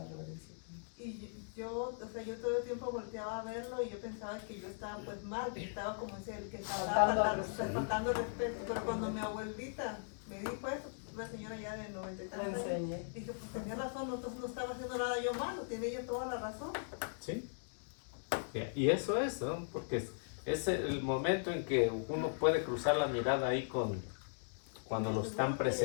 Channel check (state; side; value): silent; right; digital silence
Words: Y yo, o sea, yo todo el tiempo volteaba a verlo y yo pensaba que yo estaba pues mal, que estaba como ese el que estaba faltando el respeto. Pero cuando mi abuelita me dijo eso, una señora ya de 93 años, dije, pues tenía razón, entonces no estaba haciendo nada yo malo, tiene ella toda la razón. ¿Sí? Y eso es, ¿no? Porque es el momento en que uno puede cruzar la mirada ahí cuando lo están